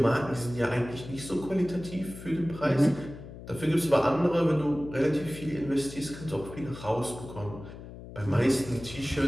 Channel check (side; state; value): left; noise; hum, 14 dB below the sound